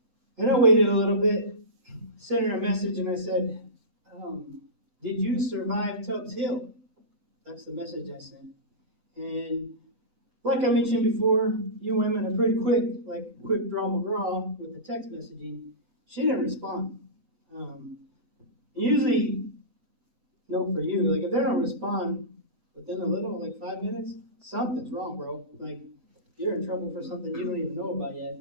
and I waited a little bit, sent her a message, and I said, did you survive Tubbs Hill? That's the message I sent. And like I mentioned before, you women are pretty quick, like quick draw McGraw with the text messaging. She didn't respond. Usually, no for you, like if they don't respond within a little, like 5 minutes, something's wrong, bro. Like, you're in trouble for something you don't even know about yet.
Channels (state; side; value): late; left; 8.0 ms